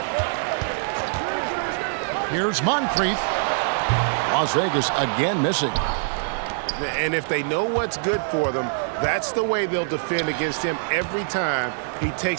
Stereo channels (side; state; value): left; silent; digital silence